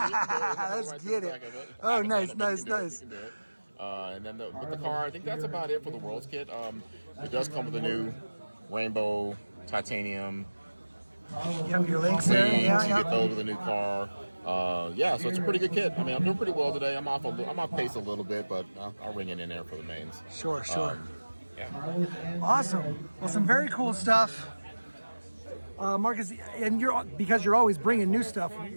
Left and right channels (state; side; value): inverted; both; correlation -1.00